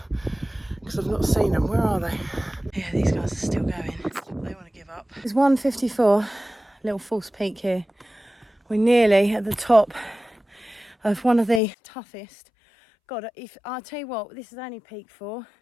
because I've not seen them. Where are they? Yeah, these guys are still going. They want to give up. It's 1:54, little false peak here. We're nearly at the top of one of the toughest. God, if I'll tell you what, this is only peak 4.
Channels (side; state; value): right; drops out; at 11.6 s